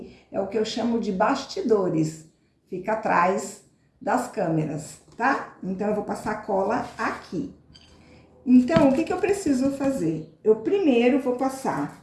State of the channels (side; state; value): both; identical; correlation 1.00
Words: é o que eu chamo de bastidores. Fica atrás das câmeras, tá? Então, eu vou passar cola aqui. Então, o que eu preciso fazer? Eu primeiro vou passar